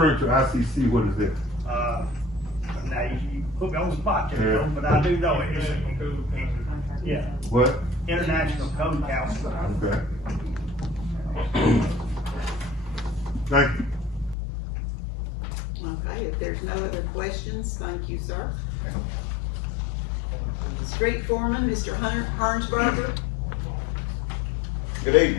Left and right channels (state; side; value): drops out; right; at 14.4 s